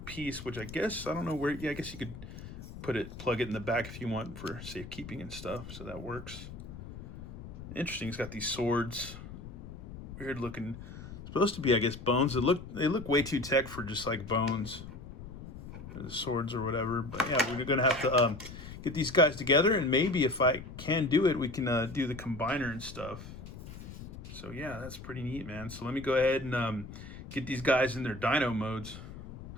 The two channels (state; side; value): noise; left; rumble, 12 dB below the sound